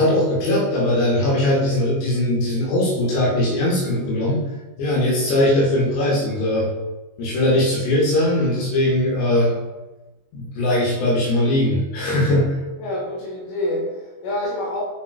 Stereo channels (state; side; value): late; right; 22 ms